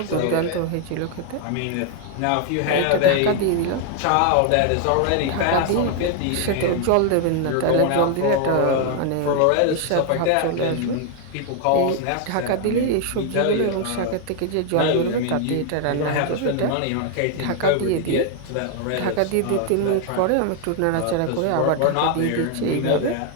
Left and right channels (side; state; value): both; different; correlation 0.00